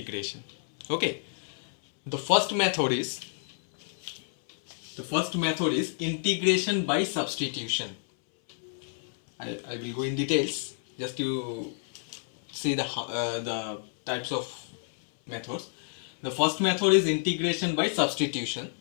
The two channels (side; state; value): right; silent; 58 dB below the other